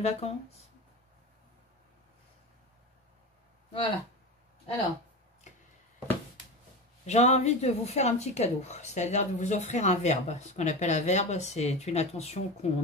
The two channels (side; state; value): both; normal; correlation 0.25